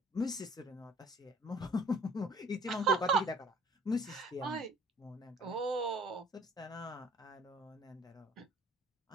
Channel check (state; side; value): normal; both; correlation 0.54